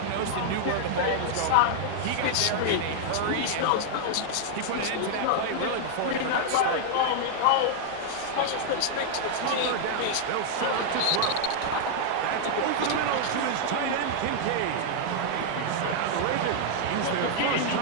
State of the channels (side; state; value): both; different; correlation -0.01